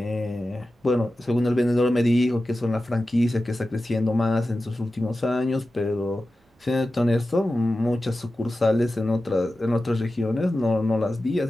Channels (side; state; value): both; normal; correlation 0.94